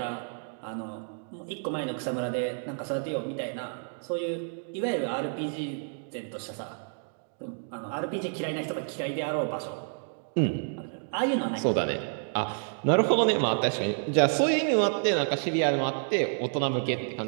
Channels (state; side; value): silent; left; 58 dB below the other